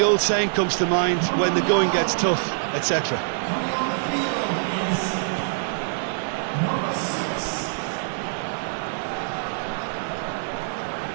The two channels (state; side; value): silent; left; digital silence